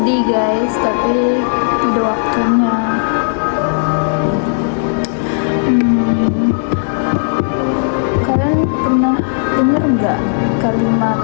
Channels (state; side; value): silent; right; digital silence